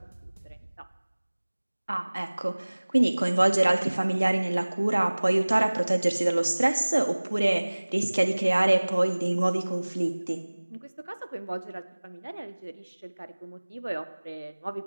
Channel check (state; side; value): inverted; both; correlation -1.00